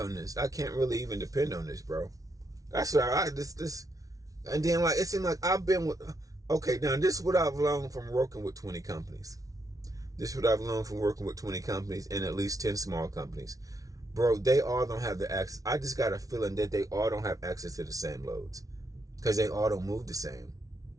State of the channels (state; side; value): late; left; 0.17 ms